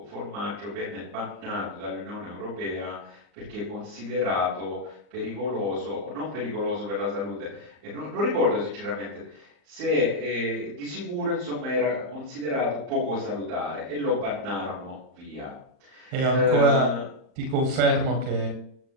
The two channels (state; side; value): late; left; 39 ms